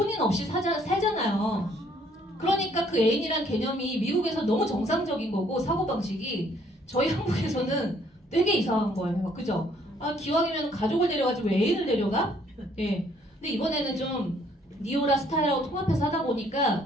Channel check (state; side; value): normal; both; correlation 0.64